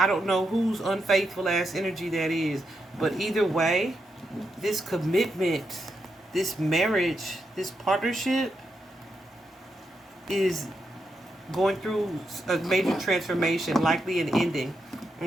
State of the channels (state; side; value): normal; both; correlation 0.84